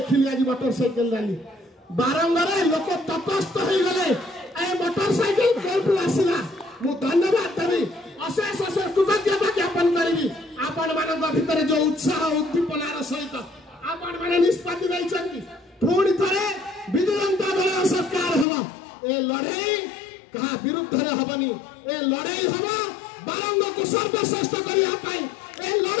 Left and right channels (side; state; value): right; drops out; at 18.4 s